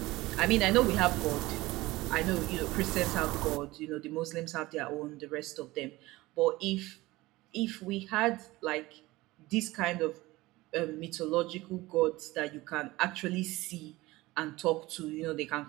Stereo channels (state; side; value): quieter; left; 19.6 dB